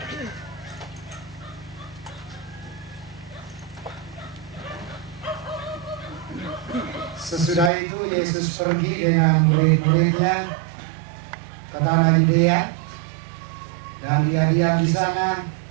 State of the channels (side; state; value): left; drops out; at 7.7 s